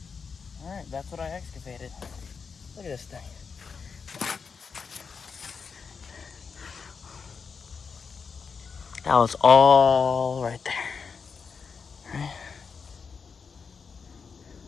Alright, that's what I excavated. Look at this thing. That was all right there. Right?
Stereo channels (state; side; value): quieter; right; 5.6 dB